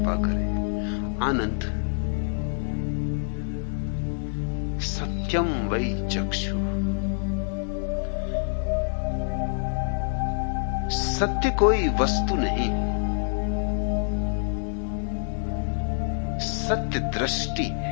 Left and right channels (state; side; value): silent; right; digital silence